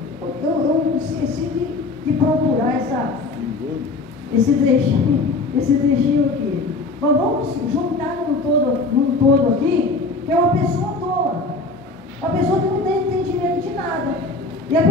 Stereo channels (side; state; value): right; quieter; 3.5 dB